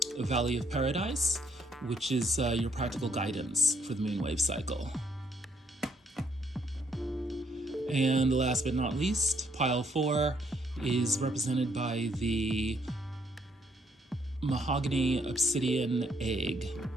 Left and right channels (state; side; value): normal; both; correlation 0.69